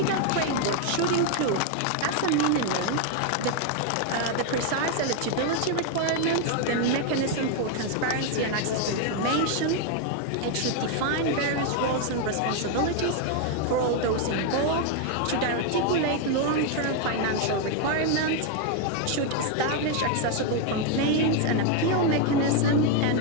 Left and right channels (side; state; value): both; different; correlation 0.01